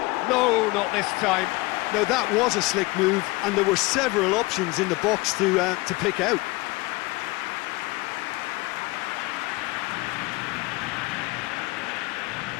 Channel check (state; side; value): quieter; right; 22.7 dB